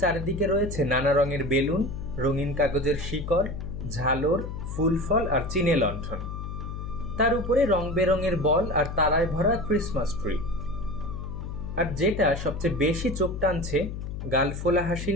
চারিদিকে রয়েছে নানা রঙের বেলুন, রঙিন কাগজের শিকড়, ঝালর, ফুল ফল আর চিনে লণ্ঠন। তার উপরে রং বেরঙের বল আর তারায় ভরা ক্রিসমাস ট্রি। আর যেটা সবচেয়ে বেশি চোখ টানছে, গালফোলা হাসি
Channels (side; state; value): left; noise; hum, 7 dB below the sound